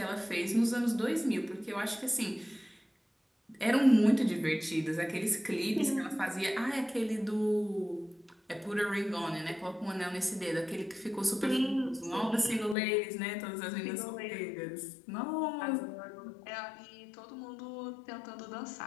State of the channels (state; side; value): drops out; right; at 12.8 s